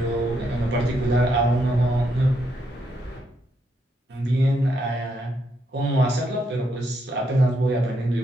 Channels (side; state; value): both; normal; correlation 0.78